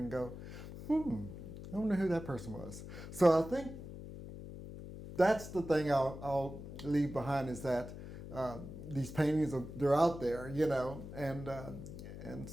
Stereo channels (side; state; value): left; noise; hum, 11 dB below the sound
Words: go, I wonder who that person was. So I think that's the thing I'll leave behind, is that these paintings they're out there, you know, and